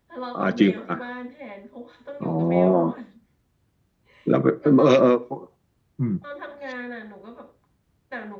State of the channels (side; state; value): both; identical; correlation 1.00